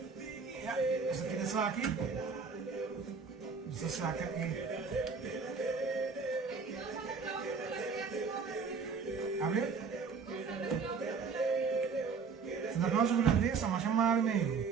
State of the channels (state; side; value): quieter; left; 5.2 dB